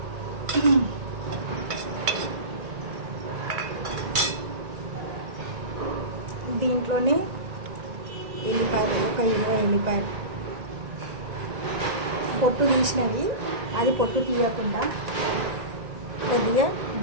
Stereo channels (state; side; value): late; left; 1.9 ms